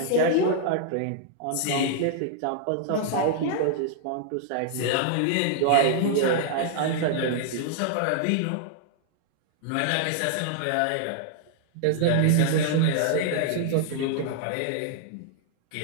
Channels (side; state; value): both; different; correlation -0.01